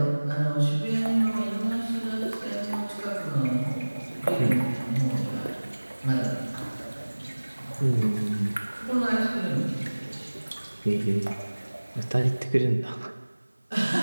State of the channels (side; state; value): both; inverted; correlation -1.00